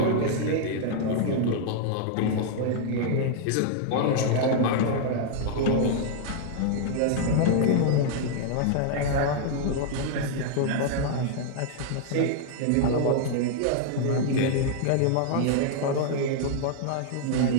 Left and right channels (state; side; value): different; both; correlation 0.00